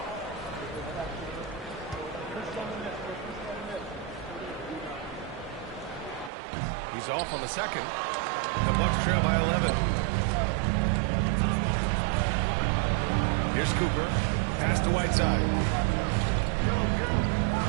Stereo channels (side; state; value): left; drops out; at 6.3 s